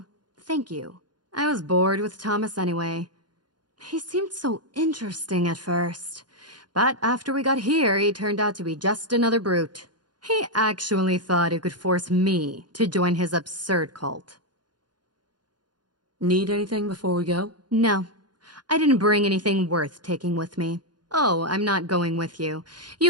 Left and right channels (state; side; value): late; left; 0.70 ms